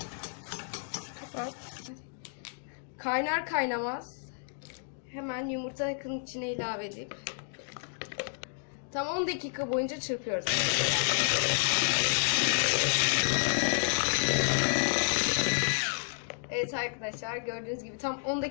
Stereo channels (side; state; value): right; silent; 57 dB below the other